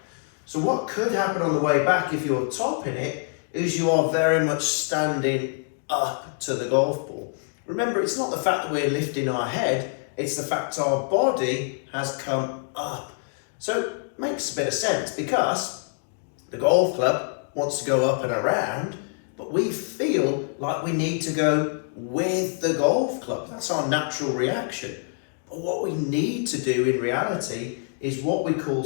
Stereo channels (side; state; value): right; silent; 61 dB below the other